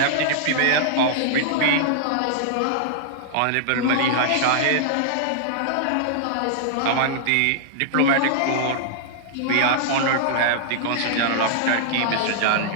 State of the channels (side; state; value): both; different; correlation -0.01